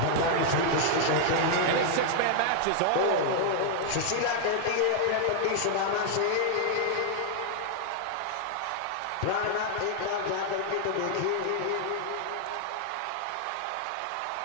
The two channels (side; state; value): both; different; correlation -0.01